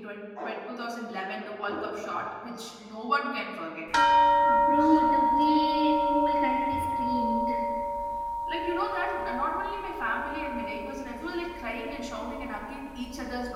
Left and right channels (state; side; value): identical; both; correlation 1.00